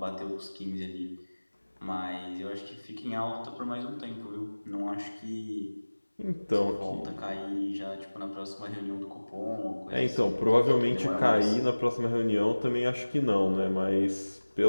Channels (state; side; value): inverted; both; correlation -1.00